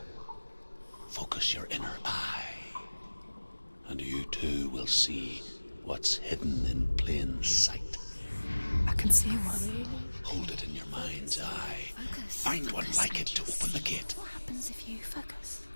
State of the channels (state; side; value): inverted; both; correlation -1.00